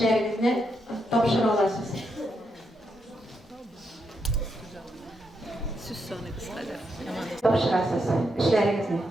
topşır olasınız. Söz sonu kısaca. Topşırasınız işlerinizni.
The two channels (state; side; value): normal; both; correlation 0.81